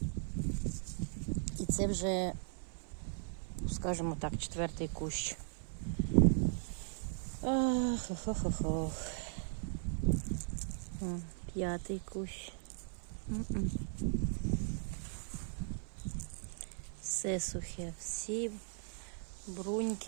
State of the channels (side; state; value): left; silent; 52 dB below the other